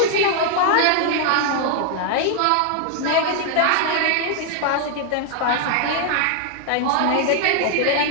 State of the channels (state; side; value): different; both; correlation 0.00